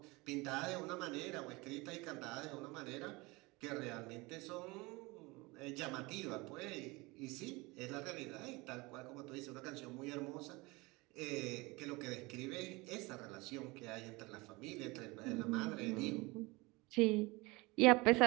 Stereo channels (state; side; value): quieter; left; 24.0 dB